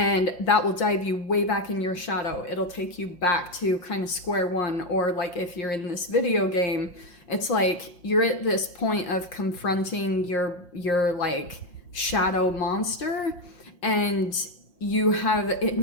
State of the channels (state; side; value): late; right; 5.7 ms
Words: that will dive you way back in your shadow. It'll take you back to kind of square one. Or like if you're in this video game, it's like you're at this point of confronting your like shadow monster, and you have it